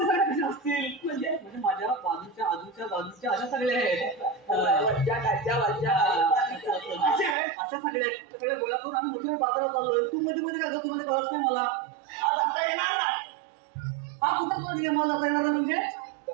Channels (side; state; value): left; drops out; at 7.4 s